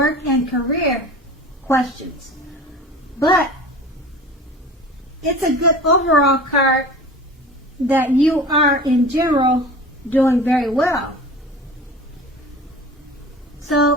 and career questions. But it's a good overall card that you are, in general, doing very well.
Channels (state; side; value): normal; both; correlation 0.38